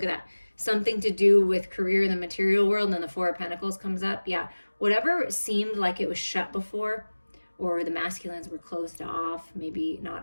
at that. Something to do with career in the material world, and then the Four of Pentacles comes up. Yeah, whatever seemed like it was shut before, or the masculines were closed off, maybe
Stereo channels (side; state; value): both; inverted; correlation -1.00